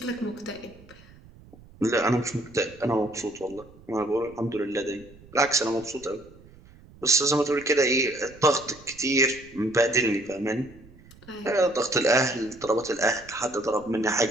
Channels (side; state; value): right; noise; rumble, 23 dB below the sound